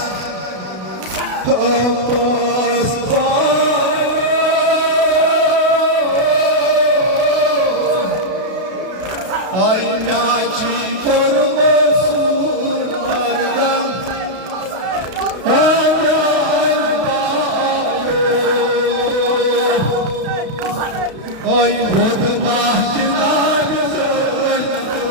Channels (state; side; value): late; left; 32 ms